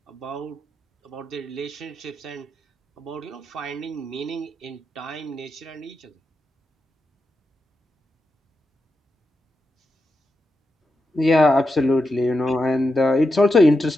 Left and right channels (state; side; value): normal; both; correlation 0.87